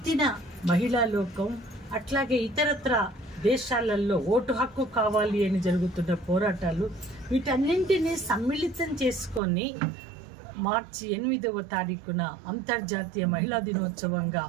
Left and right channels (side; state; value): left; drops out; at 9.4 s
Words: మహిళా లోకం, అట్లాగే ఇతరత్ర దేశాలలో ఓటు హక్కు కావాలి అని జరుగుతున్న పోరాటాలు, వీటన్నింటినీ సమ్మిళితం చేసుకొని మార్చి 8వ తారీఖున అంతర్జాతీయ మహిళా దినోత్సవంగా